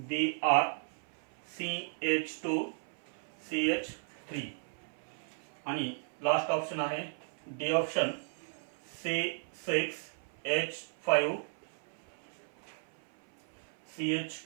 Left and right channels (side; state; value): left; silent; 54 dB below the other